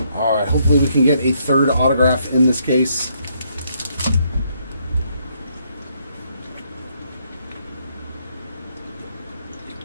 Alright, hopefully we can get a third autograph in this case.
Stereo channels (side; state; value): both; inverted; correlation -0.72